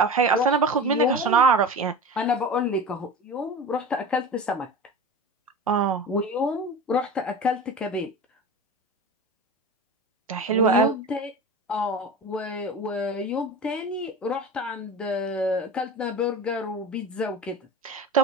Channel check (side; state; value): both; normal; correlation 0.31